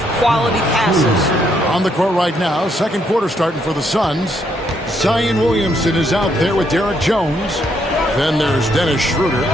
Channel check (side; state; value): both; normal; correlation 0.73